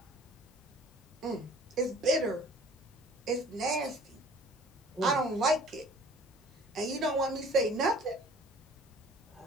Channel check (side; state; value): both; normal; correlation 0.49